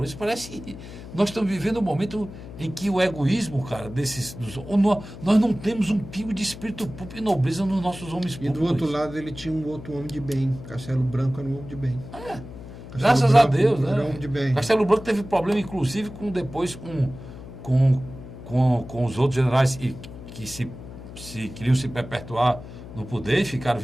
isso. Parece que nós estamos vivendo um momento em que o egoísmo, cara, nós não temos um pingo de espírito público e nobreza nos nossos homens públicos. E do outro lado ele tinha um outro homem de bem. Castelo Branco era um homem de bem. Graças a Deus, né? Era um homem de bem. Castelo Branco teve problema, inclusive, com os outros generais que queriam se perpetuar no poder e ficaram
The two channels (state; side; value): noise; left; hum, 14 dB below the sound